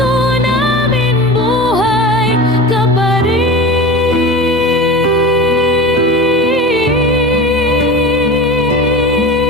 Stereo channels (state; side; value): normal; both; correlation 0.31